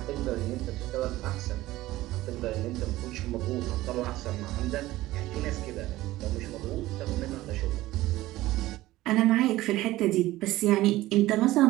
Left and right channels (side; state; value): left; quieter; 16.8 dB